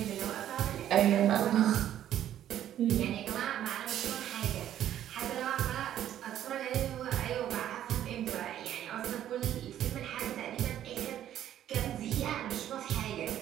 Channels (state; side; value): quieter; left; 11.4 dB